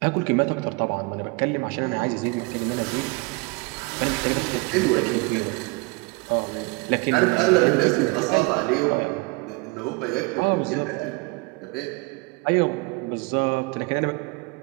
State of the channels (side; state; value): left; quieter; 26.9 dB